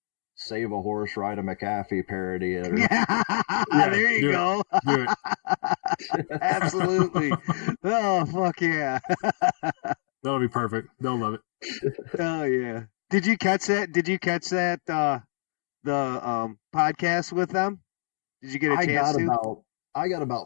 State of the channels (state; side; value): silent; right; 61 dB below the other